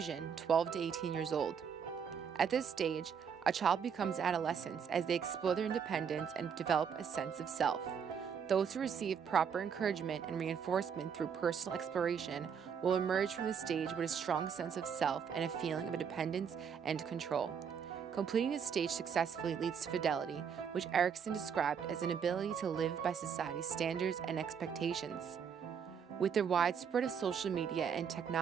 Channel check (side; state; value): left; quieter; 7.2 dB